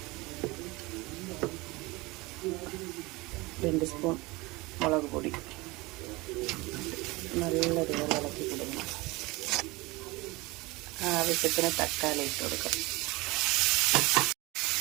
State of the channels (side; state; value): left; quieter; 23.0 dB